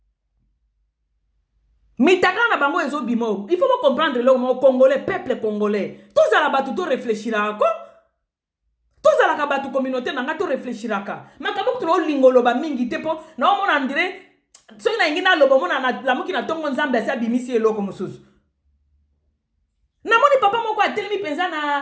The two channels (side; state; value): both; identical; correlation 1.00